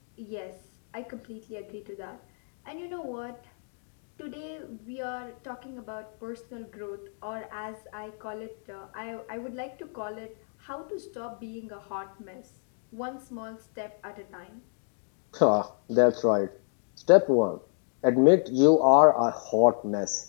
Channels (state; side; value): silent; right; 58 dB below the other